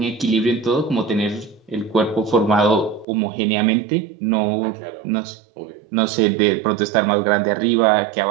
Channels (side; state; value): left; drops out; at 3.1 s